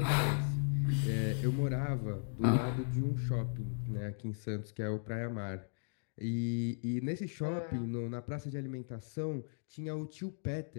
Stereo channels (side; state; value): right; silent; digital silence